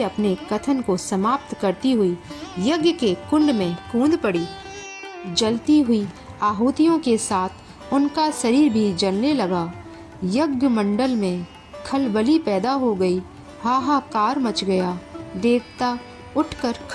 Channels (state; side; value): identical; both; correlation 1.00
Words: कथन को समाप्त करती हुई यज्ञ के कुंड में कूद पड़ी। जलती हुई आहुतियों के साथ उनका शरीर भी जलने लगा। यज्ञ मंडल में खलबली पैदा हो गई। हाहाकार मच गया। देवता उठकर